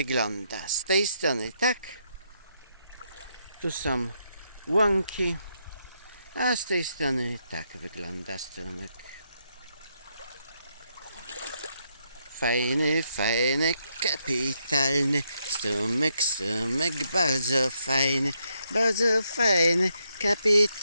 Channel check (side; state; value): both; inverted; correlation -0.78